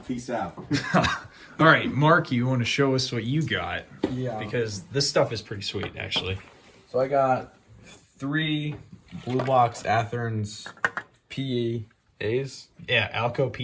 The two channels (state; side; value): identical; both; correlation 1.00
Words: Peace out. All right, Mark, you want to show us what you got? Yeah. Because this stuff is pretty sweet, actually. So I got 3 Blue Box Athearns PAs. Yeah, Alco